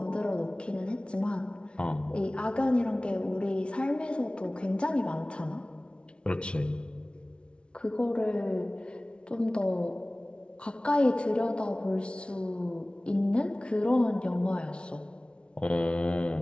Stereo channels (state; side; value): late; right; 0.058 ms